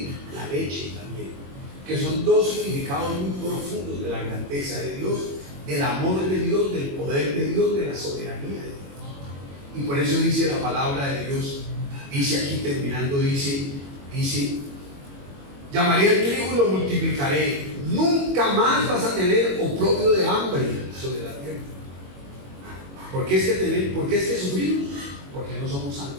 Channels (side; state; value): left; late; 21 ms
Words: la leche también, que son dos significados muy profundos de la grandeza de Dios, del amor de Dios, del poder de Dios, de la soberanía de Dios. Y por eso dice la palabra de Dios, dice aquí terminando, dice, llamaré al trigo y lo multiplicaré. Nunca más vas a tener oprobio de hambre sobre la tierra. ¿Por qué es que sufrimos? Porque no somos santos.